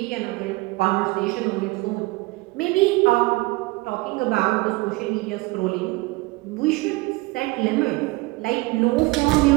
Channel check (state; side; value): quieter; left; 23.1 dB